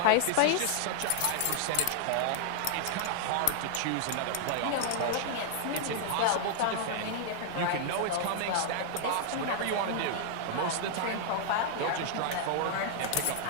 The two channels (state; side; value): different; both; correlation 0.00